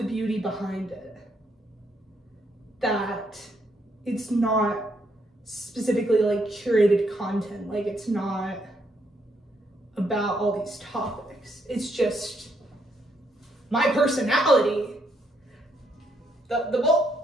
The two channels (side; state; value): both; normal; correlation 0.74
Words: beauty behind it. That it's not specifically like curated content. Like, it's not about all these topics. It's just my personality.